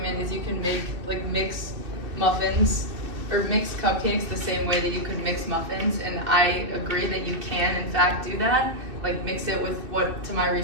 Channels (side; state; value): left; late; 2.6 ms